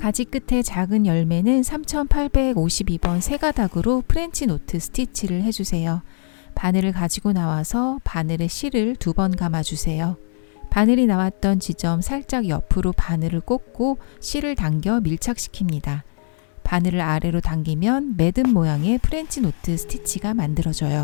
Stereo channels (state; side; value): silent; right; 65 dB below the other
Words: 끝에 작은 열매는 3852번 세 가닥으로 프렌치 노트 스티치를 해주세요. 바늘을 가지고 나와서 바늘의 실을 2번 감아주세요. 바늘이 나왔던 지점 살짝 옆으로 바늘을 꽂고 실을 당겨 밀착시킵니다. 바늘을 아래로 당기면 매듭 모양의 프렌치 노트 스티치가